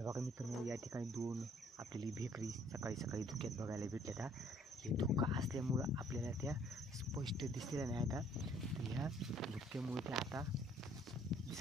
बघा मित्रांनो या ठिकाणी दोन आपल्याला भेकरी सकाळी सकाळी धुक्यात बघायला भेटल्यात. हे धुका असल्यामुळं आपल्याला त्या स्पष्ट दिसलेल्या नाही आता. तर ह्या धुक्यामुळे त्या आता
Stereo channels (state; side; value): normal; both; correlation 0.60